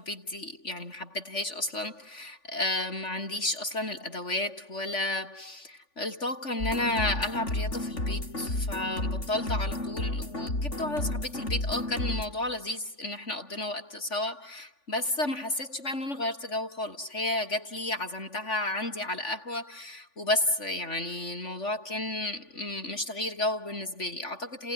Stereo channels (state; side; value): late; right; 3.5 ms